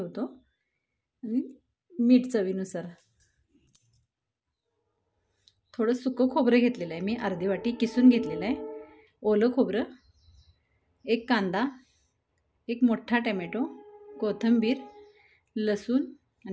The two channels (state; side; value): identical; both; correlation 1.00